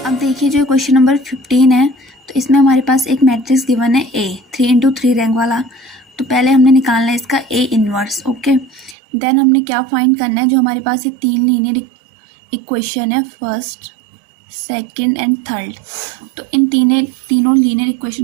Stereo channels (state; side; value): drops out; left; at 9.0 s